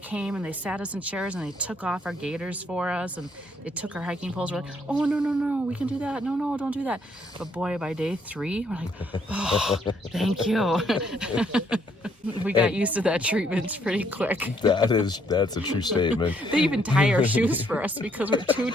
and they sat us in chairs and they took off our gaiters for us, and they took our hiking poles. We're like, oh, no, we can do that. No, don't do that. But boy, by day 3, we're like, oh, thank you. We got used to that treatment pretty quick. That's a true statement. They even tie our shoes for us because we're too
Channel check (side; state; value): both; normal; correlation 0.69